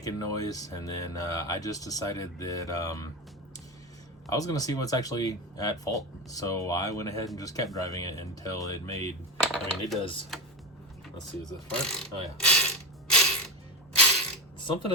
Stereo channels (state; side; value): normal; both; correlation 0.19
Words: noise, and then I just decided that I was going to see what's actually at fault. So I went ahead and just kept driving it until it made, I mean it does, let's see, is this part? Oh yeah. Something